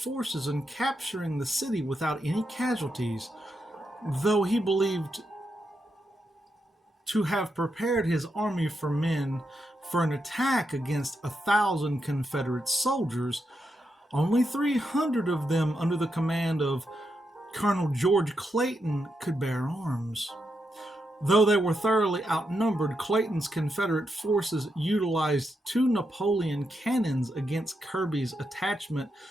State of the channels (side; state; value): both; normal; correlation 0.84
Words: and capturing the city without any casualties, though he believed to have prepared his army for men for an attack against 1,000 Confederate soldiers. Only 300 of them, under the command of Colonel George Clayton, could bear arms. Though they were thoroughly outnumbered, Clayton's Confederate forces utilized 2 Napoleon cannons against Kirby's attachment